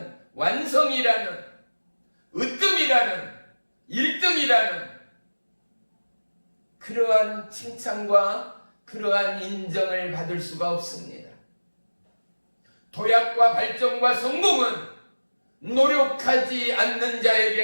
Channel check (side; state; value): both; inverted; correlation -1.00